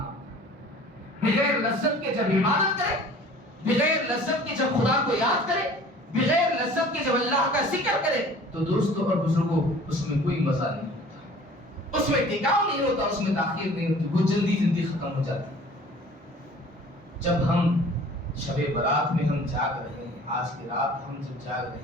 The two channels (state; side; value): normal; both; correlation 0.47